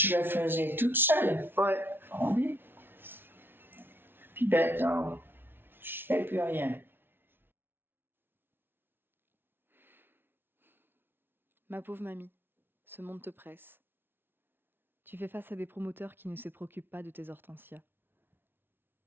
le faisais toute seule. Ouais. Ah oui. Puis maintenant, je fais plus rien. Ma pauvre mamie, ce monde te presse. Tu fais face à des promoteurs qui ne se préoccupent pas de tes hortensias.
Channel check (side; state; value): left; late; 0.11 ms